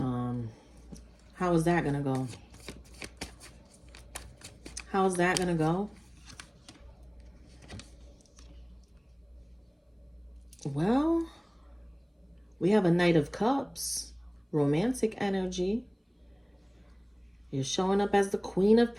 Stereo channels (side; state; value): both; identical; correlation 1.00